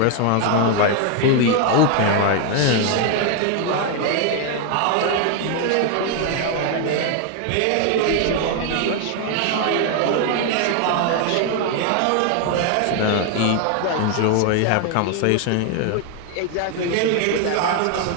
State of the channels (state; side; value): different; both; correlation 0.01